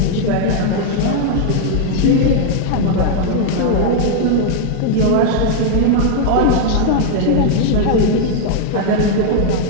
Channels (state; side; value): different; both; correlation 0.00